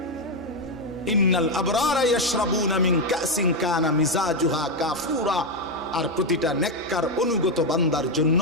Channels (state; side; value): normal; both; correlation 0.05